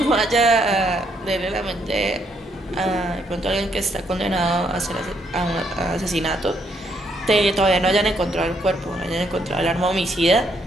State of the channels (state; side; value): normal; both; correlation 0.73